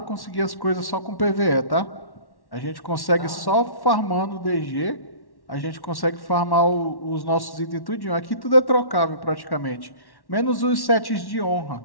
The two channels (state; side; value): late; right; 1.1 ms